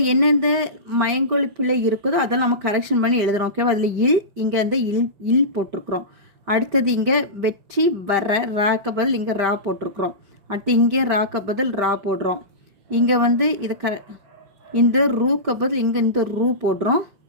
எந்தெந்த மயங்கொலி பிள்ளை இருக்குதோ அதெல்லாம் நம்ம கரெக்ஷன் பண்ணி எழுதுகிறோம். ஓகேவா? அதில் இல், இங்கே இல் போட்டிருக்கிறோம். அடுத்தது இங்கே வெற்றி, வர, ராக்க பதில் இங்கே ரா போட்டிருக்கிறோம். அடுத்து இங்கே ராக்க பதில் ரா போடுறோம். இங்கே இது இந்த ரூக்க பதில் இங்கே இந்த ரூ போடுறோம்.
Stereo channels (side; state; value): left; late; 5.1 ms